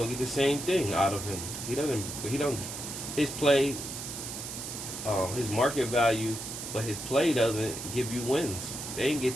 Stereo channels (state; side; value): noise; right; hiss, 7 dB below the sound